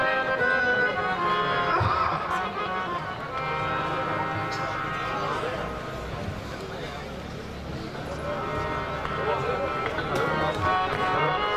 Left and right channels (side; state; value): both; identical; correlation 1.00